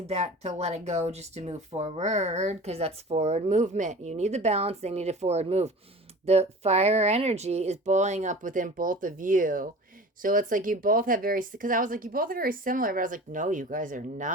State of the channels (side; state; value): both; normal; correlation 0.39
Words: that to let it go, just to move forward, because that's forward movement. You need the balance, they need a forward move. The fire energy is boiling up within both of you. So it's like you both have because I was like, you both are very similar, but I was like, no, you guys are